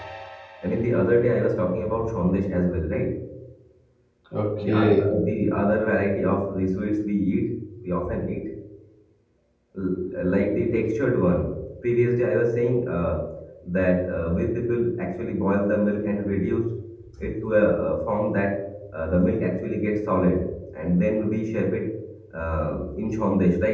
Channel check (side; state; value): both; identical; correlation 1.00